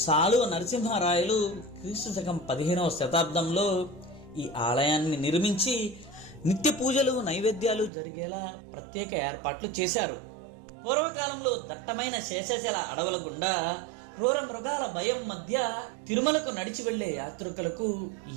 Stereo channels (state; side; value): drops out; left; at 7.9 s